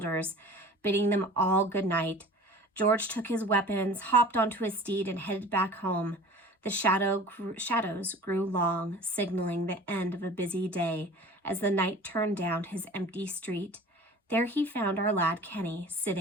bidding them all good night. George took his weapons, hopped onto his steed, and headed back home. The shadows grew long, signaling the end of a busy day as the knight turned down his empty street. There he found our lad Kenny,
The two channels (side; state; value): both; normal; correlation 0.42